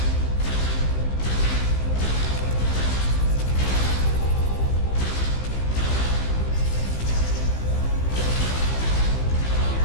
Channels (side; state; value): right; late; 15 ms